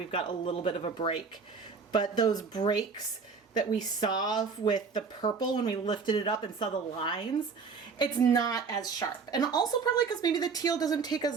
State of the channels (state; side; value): quieter; left; 5.2 dB